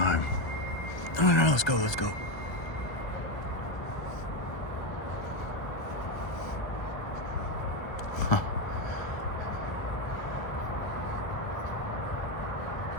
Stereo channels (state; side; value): late; right; 1.0 ms